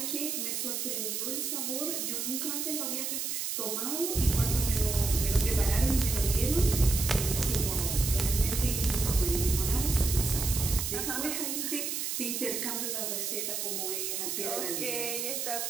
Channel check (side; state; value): right; noise; hiss, 2 dB below the sound